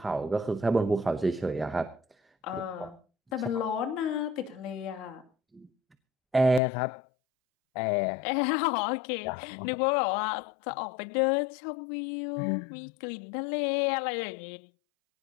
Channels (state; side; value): drops out; right; at 6.6 s